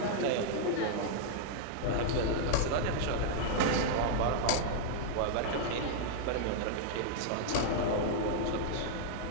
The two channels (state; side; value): different; both; correlation -0.01